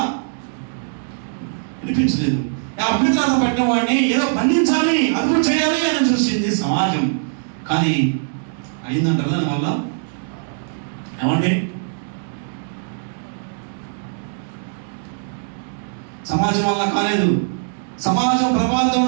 వినిపించలేదు. అభ్యంతరాలు పట్టిన వాడిని ఏదో బంధించాలి, అదుపు చేయాలి అని చూసింది సమాజం. కానీ అయిందంటారు దానివల్ల? ఏమండి, సమాజం వల్ల కాలేదు. సమాజం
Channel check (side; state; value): left; silent; digital silence